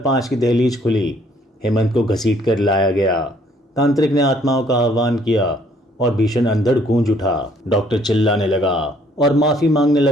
की दहलीज खुली। हेमंत को घसीट कर लाया गया। तांत्रिक ने आत्माओं का आह्वान किया और भीषण अंधड़ गूंज उठा। डॉक्टर चिल्लाने लगा और माफी मांगने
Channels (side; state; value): both; normal; correlation 0.63